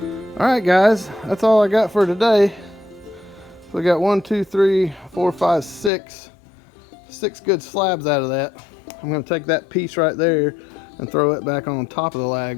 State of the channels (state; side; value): drops out; right; at 5.9 s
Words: All right, guys, that's all I got for today. So we got 1, 2, 3, 4, 5, 6 good slabs out of that. I'm going to take that piece right there and throw it back on top of the